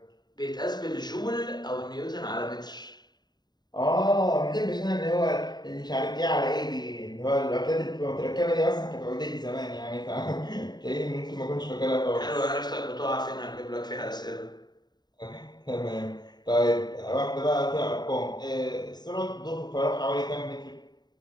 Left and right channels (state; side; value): late; right; 0.20 ms